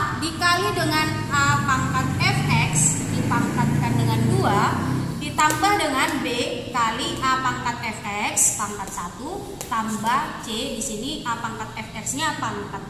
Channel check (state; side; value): identical; both; correlation 1.00